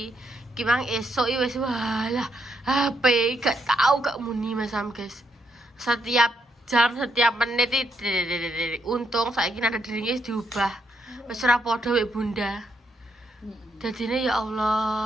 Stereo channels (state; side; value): normal; both; correlation 0.77